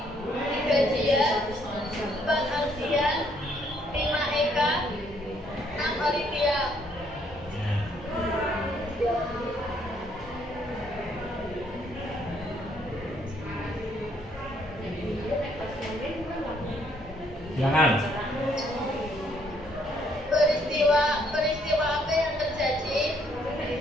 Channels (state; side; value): normal; both; correlation 0.68